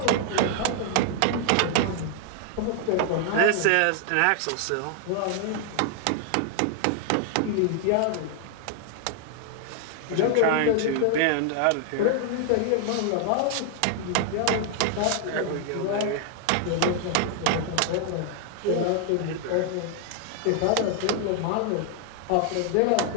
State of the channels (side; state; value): both; different; correlation 0.00